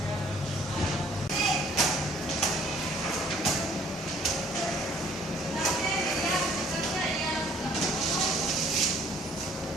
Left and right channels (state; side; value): normal; both; correlation 0.58